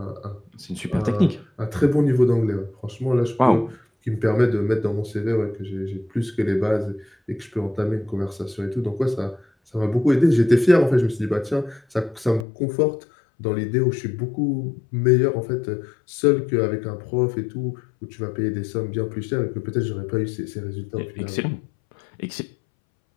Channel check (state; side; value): drops out; right; at 12.5 s